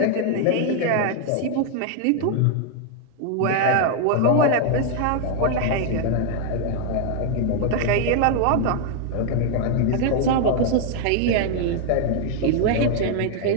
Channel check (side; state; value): both; different; correlation 0.00